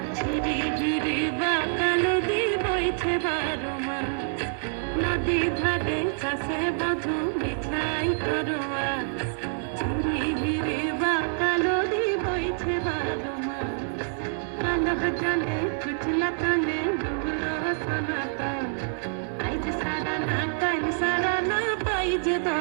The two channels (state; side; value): silent; left; 60 dB below the other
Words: झिरी झिरी बाकाल दी বইছে বারো মাস नदी धारे चासे बधू मिठाई करवा झिरी झिरी बाकाल दी বইছে বারো মাস কালো জলে কুচলা কালে ডুবলো সনাতন আজ সারা না কাল সারা না পাইছে